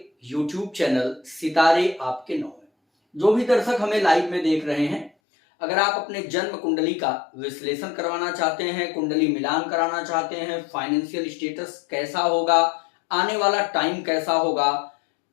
YouTube चैनल सितारे आपके नौ में। जो भी दर्शक हमें लाइव में देख रहे हैं, अगर आप अपने जन्म कुंडली का विश्लेषण करवाना चाहते हैं, कुंडली मिलान कराना चाहते हैं, फाइनेंशियल स्टेटस कैसा होगा, आने वाला टाइम कैसा होगा,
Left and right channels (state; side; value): drops out; right; at 5.1 s